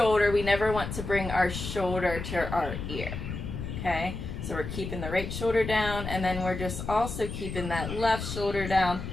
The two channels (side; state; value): left; noise; rumble, 6 dB below the sound